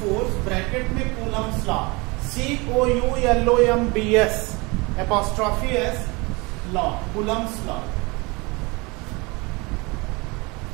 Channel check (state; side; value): quieter; left; 26.4 dB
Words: bracket में Coulomb's law, COULOMBS apostrophe S law, Coulomb's law.